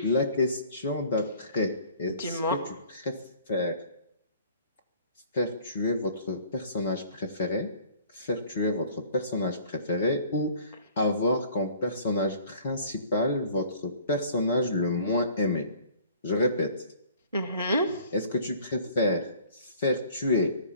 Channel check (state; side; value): inverted; both; correlation -0.52